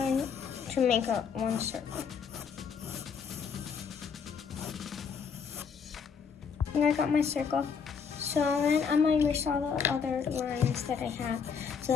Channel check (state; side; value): quieter; right; 6.3 dB